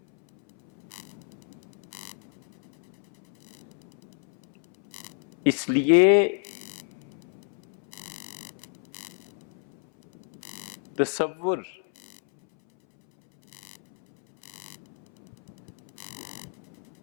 اس لیے تصور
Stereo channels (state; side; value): silent; right; 57 dB below the other